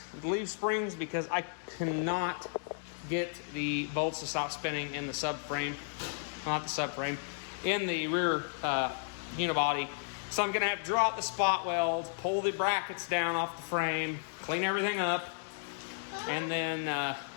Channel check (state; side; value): silent; right; digital silence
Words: the leaf springs, because I cannot get the bolts to stop spinning in the subframe. Not the subframe, in the rear unibody. So I'm going to have to draw out the spot weld, pull the brackets down off the frame, clean everything up, and then